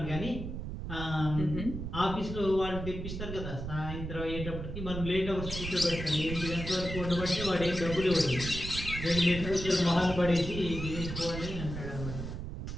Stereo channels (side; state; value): right; noise; rumble, 6 dB below the sound